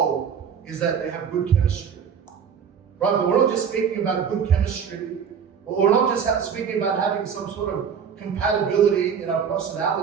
is that they have good chemistry. Right? But we're not just speaking about good chemistry. We're not just speaking about having some sort of compatibility in our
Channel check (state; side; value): quieter; left; 7.2 dB